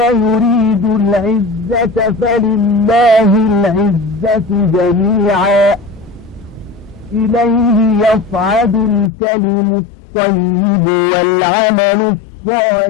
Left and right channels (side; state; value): right; drops out; at 9.1 s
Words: يريد العزة فلله العزة جميعا إليه يصعد الكلم الطيب والعمل